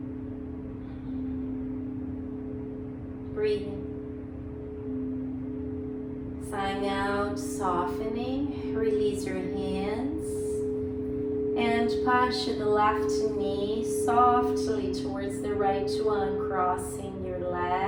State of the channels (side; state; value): both; identical; correlation 1.00